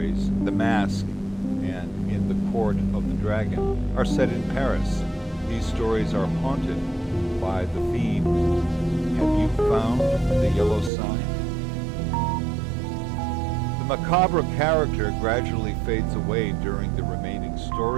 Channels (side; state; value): left; drops out; at 10.9 s